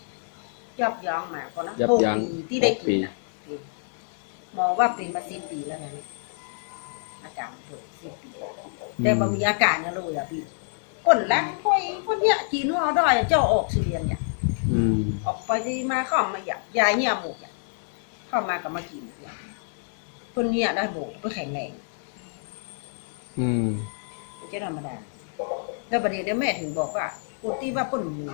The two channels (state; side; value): silent; right; digital silence